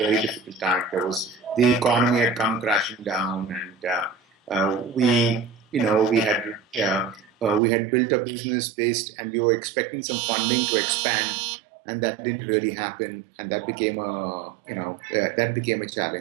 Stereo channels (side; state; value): left; drops out; at 7.6 s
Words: difficult time. The economy had come crashing down, and we had built a business based, and we were expecting some funding to expand, and that didn't really happen, and that became a